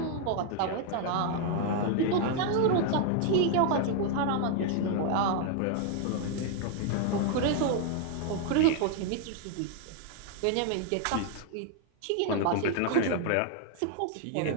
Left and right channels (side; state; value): both; different; correlation 0.00